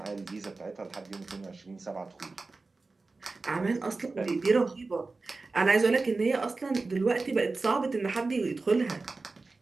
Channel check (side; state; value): left; quieter; 3.7 dB